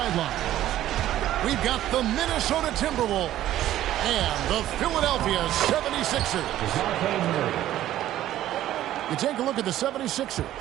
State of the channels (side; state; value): left; quieter; 13.2 dB